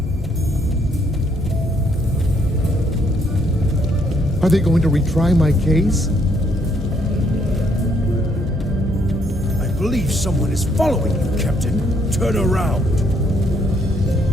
Are they going to retry my case? I believe someone is following you, Captain. Turn around.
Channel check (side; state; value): both; normal; correlation 0.70